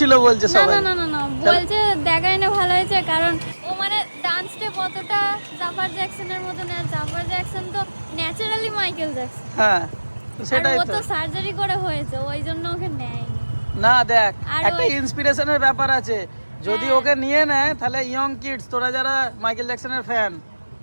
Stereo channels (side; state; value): both; inverted; correlation -1.00